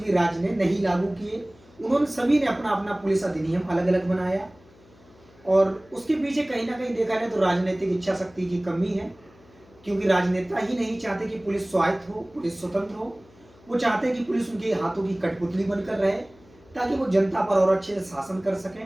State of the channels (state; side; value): noise; left; hum, 27 dB below the sound